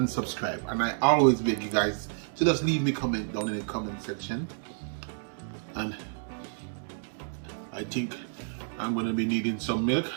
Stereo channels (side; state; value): left; silent; digital silence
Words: subscribe. And I always beg you guys to just leave me a comment down in the comment section. And I think I'm gonna be needing some milk